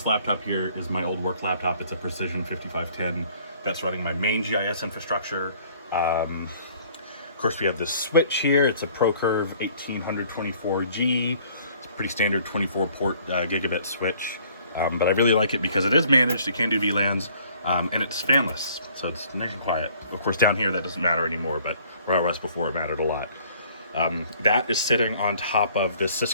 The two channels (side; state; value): both; inverted; correlation -0.57